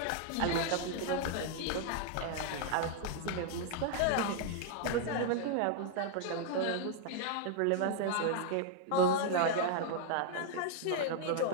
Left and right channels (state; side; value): different; both; correlation 0.00